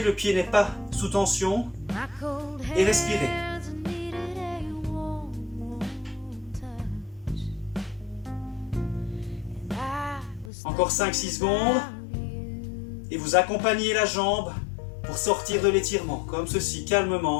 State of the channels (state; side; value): drops out; right; at 10.5 s